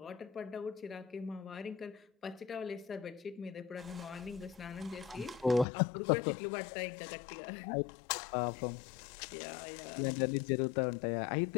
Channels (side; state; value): right; drops out; at 5.7 s